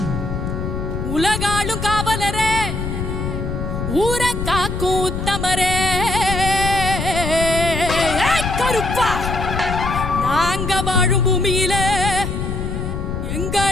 உலகாளும் காவலரே ஊர காக்கும் உத்தமரே கருப்பா நாங்க வாழும் பூமியில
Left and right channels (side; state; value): left; noise; rumble, 4 dB below the sound